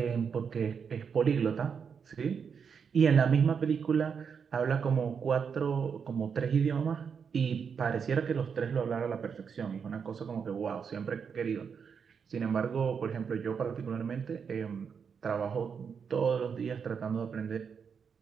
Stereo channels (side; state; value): left; quieter; 6.5 dB